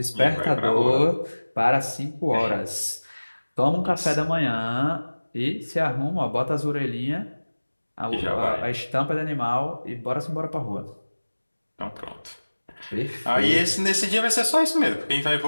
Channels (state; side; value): inverted; both; correlation -1.00